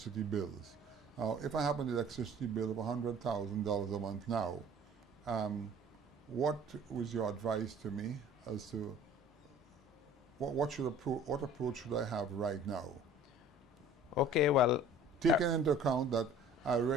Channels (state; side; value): normal; both; correlation 0.48